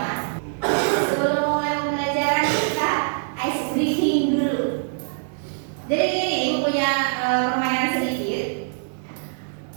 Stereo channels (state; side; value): silent; left; 63 dB below the other